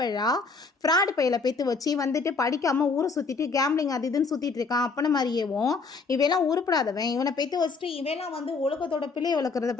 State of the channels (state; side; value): quieter; right; 4.4 dB